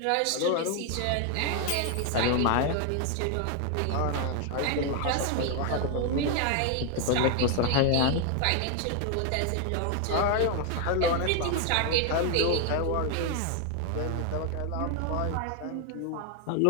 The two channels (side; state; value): both; different; correlation 0.01